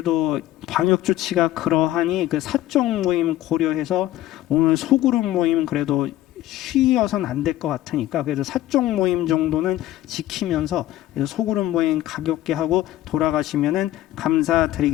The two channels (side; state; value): right; quieter; 14.4 dB